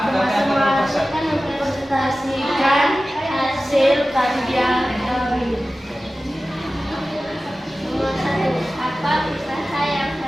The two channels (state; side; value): normal; both; correlation 0.95